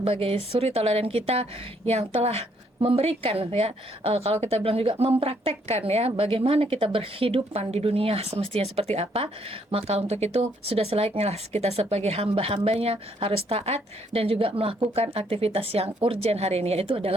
suri tauladan kita yang telah memberikan ya, kalau kita bilang juga mempraktekkan ya bagaimana kita berhidupan di dunia semestinya seperti apa. Maka untuk itu sudah selayaknya lah kita sebagai hamba-hambanya harus taat dan juga melakukan aktivitas yang urgent hari ini, yaitu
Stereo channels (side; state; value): both; normal; correlation 0.69